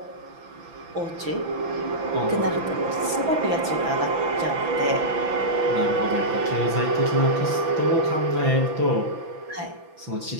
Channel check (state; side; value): late; left; 6.0 ms